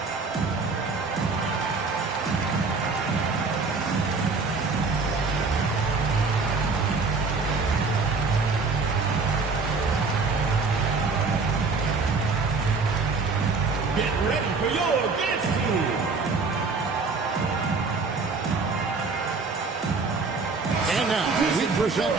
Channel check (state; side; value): quieter; left; 4.3 dB